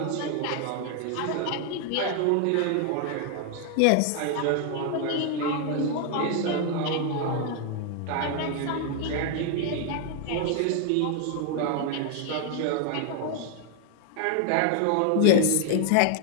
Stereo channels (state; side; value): different; both; correlation 0.00